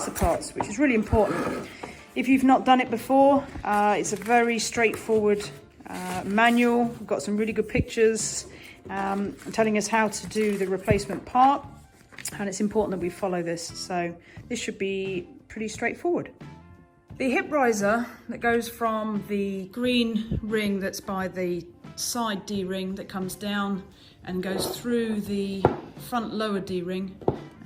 the parts, which is really important. If you've not done it before, it's a very straightforward manual. We've got some really good pictures telling us how to do the replacement part, and it's important that we follow this, so this should be pretty straightforward. The hip riser that goes from the green ring that's by the side D-ring that comes down and goes through the front lower D-ring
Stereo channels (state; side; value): identical; both; correlation 1.00